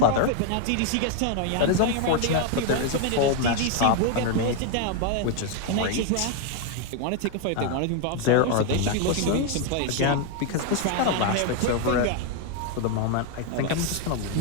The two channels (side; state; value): both; different; correlation 0.01